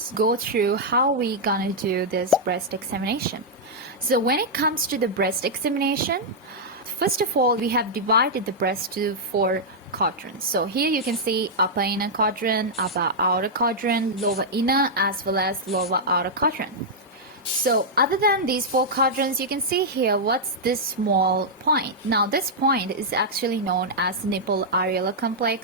go through how we're gonna do this breast examination. So when it comes to the breast examination, first of all, we have divided the breast to 4 quadrants. So here you can see upper inner quadrant, upper outer quadrant, lower inner, as well as lower outer quadrant. So other than these 4 quadrants, you can see here what's this small point. Now this point is actually known as nipple areolar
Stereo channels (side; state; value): both; normal; correlation -0.06